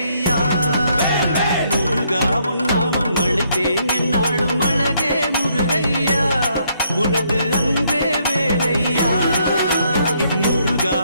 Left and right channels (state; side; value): inverted; both; correlation -0.72